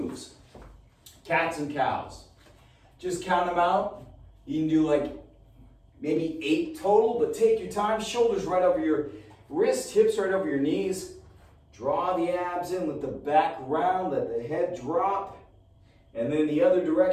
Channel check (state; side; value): identical; both; correlation 1.00